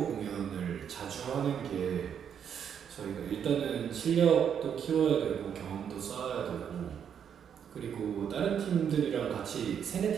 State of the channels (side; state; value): left; quieter; 8.2 dB